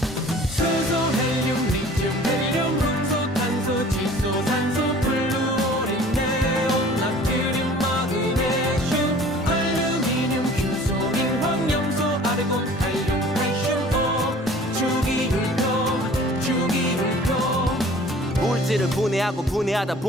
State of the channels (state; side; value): normal; both; correlation 0.48